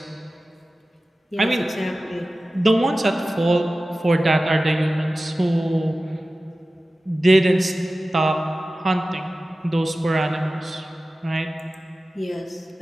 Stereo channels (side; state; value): both; normal; correlation 0.96